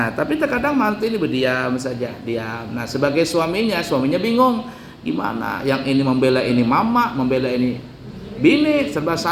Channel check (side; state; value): both; identical; correlation 1.00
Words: tapi terkadang mantu ini berdiam saja, diam. Nah, sebagai suaminya bingung gimana? Yang ini membela ini mama, membela ini bini, serba